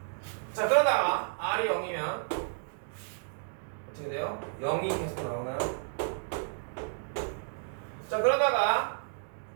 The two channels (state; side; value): silent; left; digital silence